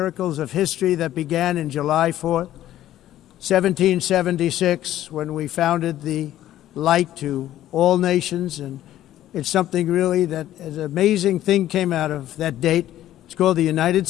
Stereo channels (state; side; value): quieter; right; 13.0 dB